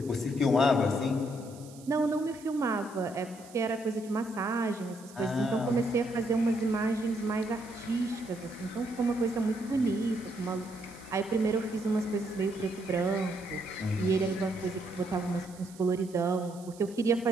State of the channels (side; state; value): right; noise; hiss, 22 dB below the sound